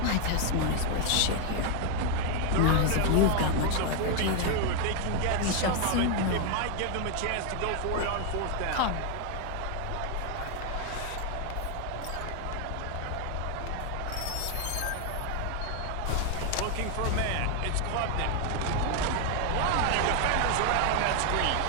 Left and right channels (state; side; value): different; both; correlation 0.01